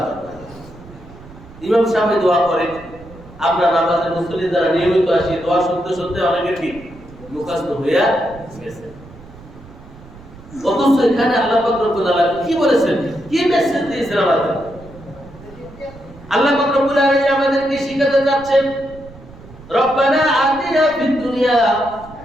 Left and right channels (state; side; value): noise; right; rumble, 20 dB below the sound